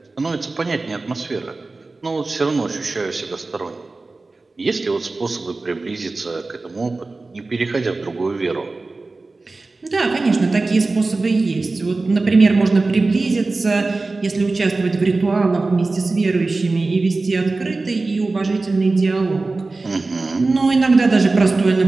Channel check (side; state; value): left; quieter; 3.5 dB